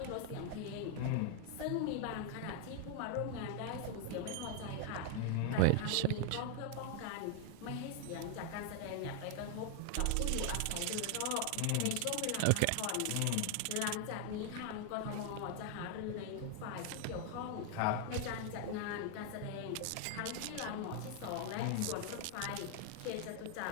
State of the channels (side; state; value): both; different; correlation 0.00